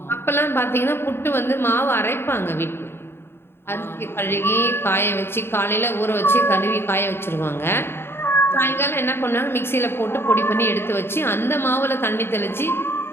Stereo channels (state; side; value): late; right; 0.11 ms